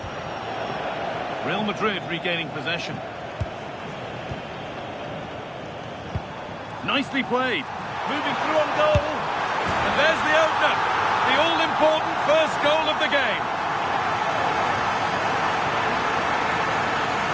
Real Madrid regaining possession. Nicely played. Moving through on goal. And there's the opener. The all-important first goal of the game.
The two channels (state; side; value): identical; both; correlation 1.00